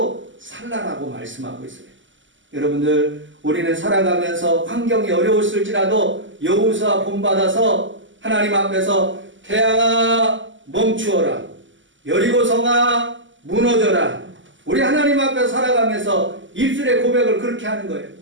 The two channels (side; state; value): left; late; 0.55 ms